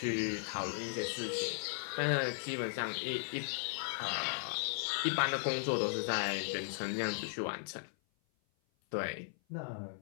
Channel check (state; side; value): silent; right; 53 dB below the other